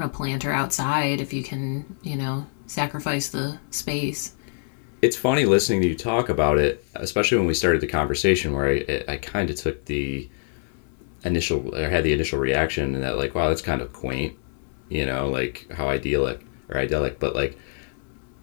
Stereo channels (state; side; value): silent; right; 62 dB below the other